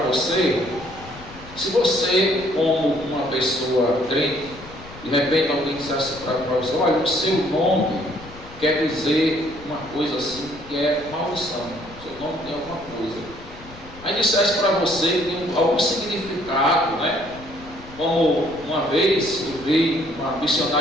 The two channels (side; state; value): left; noise; rumble, 18 dB below the sound